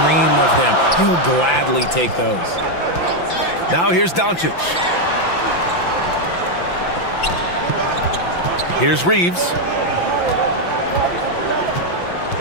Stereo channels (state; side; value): late; right; 5.9 ms